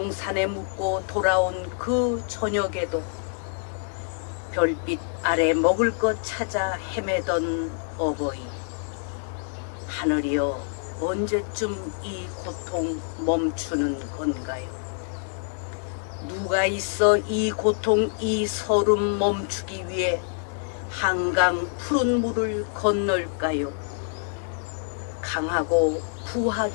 묻고 돌아온 그 저녁에도 별빛 아래 먹을 것 찾아 헤매던 어버이, 하늘이여 언제쯤 이 고통 멈추는 건가요? 누가 있어 이 고통 이 서름 멈추기 위해 한강 푸른 물을 건널까요? 강하고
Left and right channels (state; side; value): silent; right; digital silence